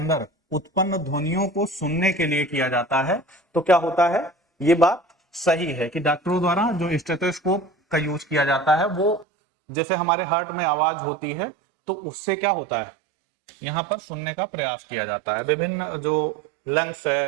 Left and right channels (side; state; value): left; drops out; at 9.2 s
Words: उत्पन्न ध्वनियों को सुनने के लिए किया जाता है। तो क्या होता है, ये बात सही है कि डॉक्टरों द्वारा जो स्टेथोस्कोप का यूज किया जाता है वो जैसे हमारे हार्ट में आवाज होती है तो उससे क्या होता है, यहाँ पर सुनने का प्रयास किया जाता है। विभिन्न जो लंग्स